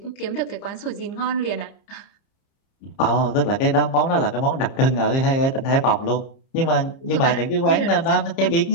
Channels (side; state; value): right; late; 30 ms